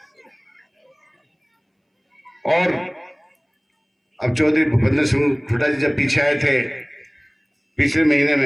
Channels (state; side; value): identical; both; correlation 1.00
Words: और अब चौधरी भूपेंद्र सिंह हुड्डा जी जब पीछे आए थे पिछले महीने